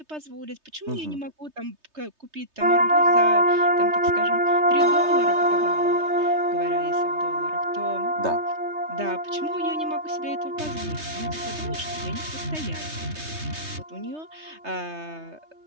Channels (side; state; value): left; late; 3.3 ms